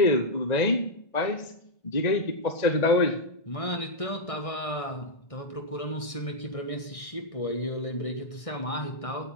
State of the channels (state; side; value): late; right; 1.6 ms